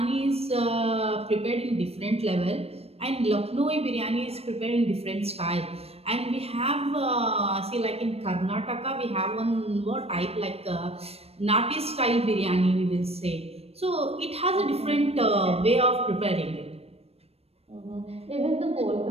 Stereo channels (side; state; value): left; late; 0.29 ms